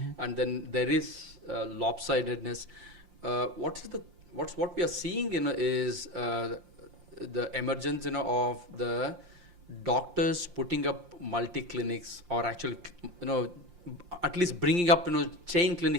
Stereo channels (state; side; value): late; left; 5.7 ms